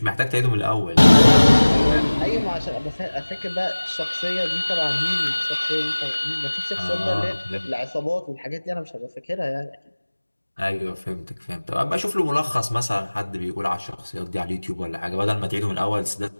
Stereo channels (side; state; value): both; inverted; correlation -1.00